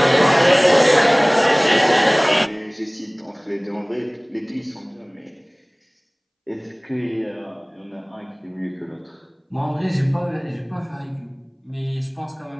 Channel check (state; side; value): identical; both; correlation 1.00